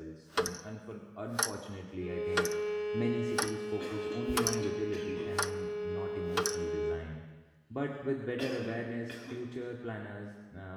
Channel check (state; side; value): identical; both; correlation 1.00